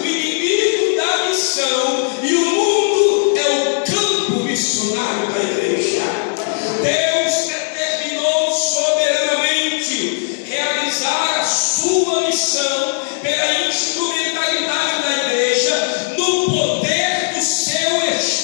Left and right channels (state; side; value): silent; right; digital silence